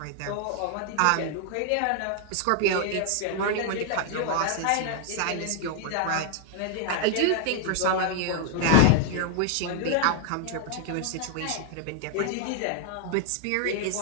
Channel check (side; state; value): both; different; correlation 0.00